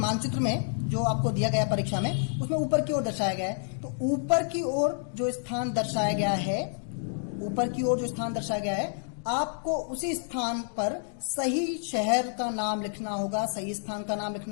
में जो आपको दिया गया परीक्षा में, उसमें ऊपर की ओर दर्शाया गया है। तो ऊपर की ओर जो स्थान दर्शाया गया है, ऊपर की ओर जो स्थान दर्शाया गया है, आपको उसी स्थान पर सही शहर का नाम लिखना होगा, सही स्थान का नाम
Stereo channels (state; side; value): silent; right; digital silence